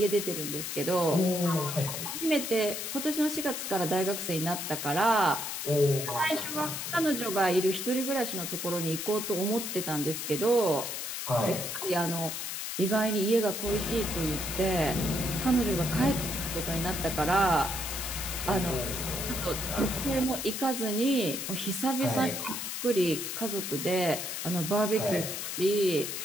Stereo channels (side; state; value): left; noise; hiss, 4 dB below the sound